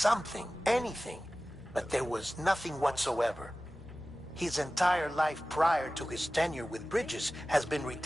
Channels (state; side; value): normal; both; correlation 0.97